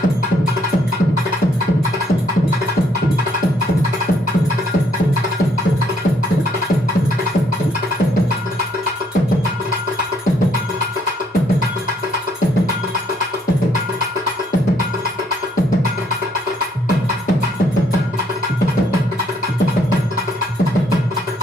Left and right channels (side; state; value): both; normal; correlation 0.69